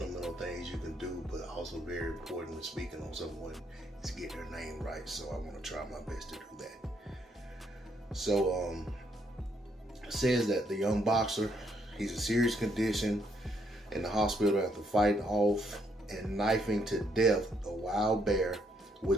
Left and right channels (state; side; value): normal; both; correlation 0.73